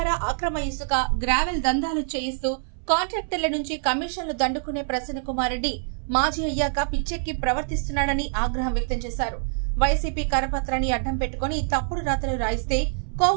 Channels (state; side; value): silent; left; 62 dB below the other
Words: అక్రమ ఇసుక, గ్రావెల్ దందాలు చేయిస్తూ కాంట్రాక్టర్ల నుంచి కమిషన్లు దండుకునే ప్రసన్న కుమార్ రెడ్డి మాజీ అయ్యాక పిచ్చెక్కి ప్రవర్తిస్తున్నాడని ఆగ్రహం వ్యక్తం చేశారు. వైసీపీ కరపత్రాన్ని అడ్డం పెట్టుకుని తప్పుడు రాతలు రాయిస్తే